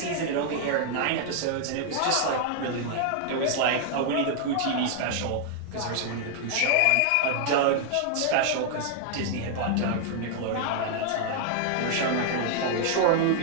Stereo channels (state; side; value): different; both; correlation 0.00